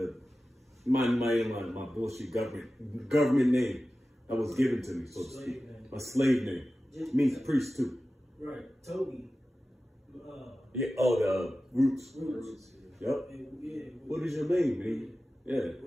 my bullshit government name that was given to me, so to speak. A slave name. Means priest too. right, Toby. Yeah. Oh, the roots. Yep. Yeah. What is your name, man? Yeah.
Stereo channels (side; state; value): both; normal; correlation 0.94